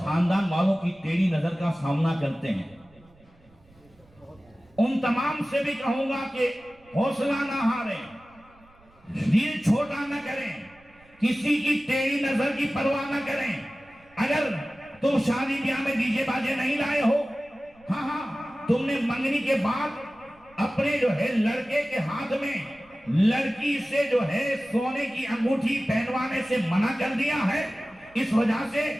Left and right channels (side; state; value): right; noise; rumble, 29 dB below the sound